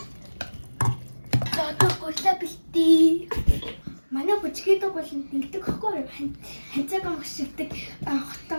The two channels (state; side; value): inverted; both; correlation -1.00